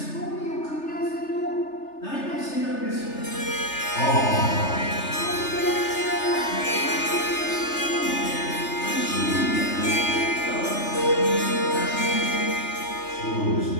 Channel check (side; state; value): right; late; 3.3 ms